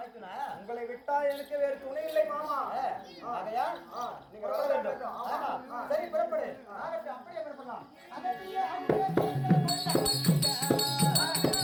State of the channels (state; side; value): identical; both; correlation 1.00